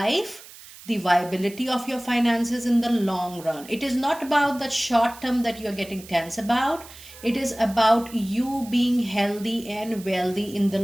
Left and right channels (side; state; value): right; noise; hiss, 18 dB below the sound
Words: the viability of your finances in the long run. It is not about the short term that you're getting tense about. It is about you being healthy and wealthy in the